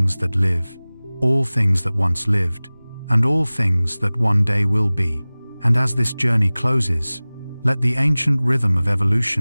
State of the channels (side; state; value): both; inverted; correlation -0.99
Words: that live, all things that once lived, and all things that one day will be. And as this journey closes, Let the ancient rhythm of